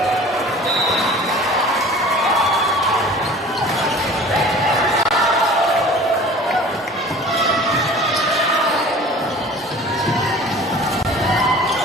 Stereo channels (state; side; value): normal; both; correlation 0.44